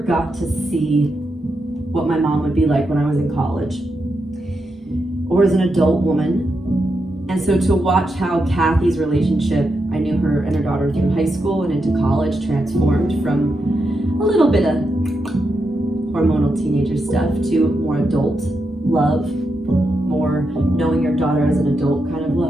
to see what my mom would be like when I was in college or as an adult woman. And so to watch how Kathy's relationship, I knew her and her daughter through high school and into college, transformed from a little bit of hormonal teenager stuff to more adult love, more knowing your daughter as an adult kind of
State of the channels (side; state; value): both; normal; correlation 0.85